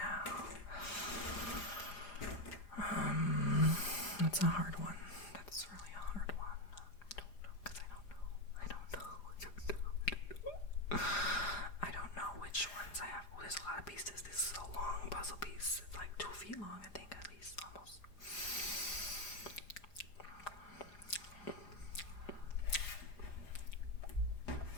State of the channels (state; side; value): late; right; 4.9 ms